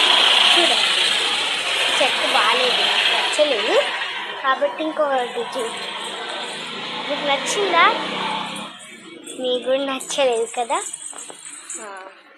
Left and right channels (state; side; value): identical; both; correlation 1.00